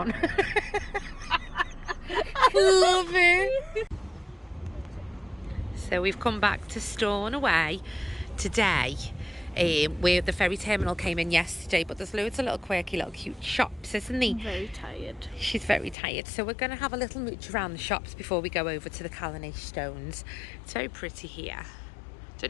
Love it. So we've come back to Stornaway today, where the ferry terminal came in yesterday, but there's loads of little quirky little cute shops, isn't there? I'm very tired. She's very tired, so we're going to have a little mooch around the shops before we go over to the Calanais Stones. It's very pretty here.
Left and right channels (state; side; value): drops out; right; at 16.0 s